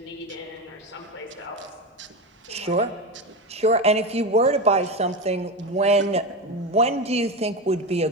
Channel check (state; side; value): normal; both; correlation 0.18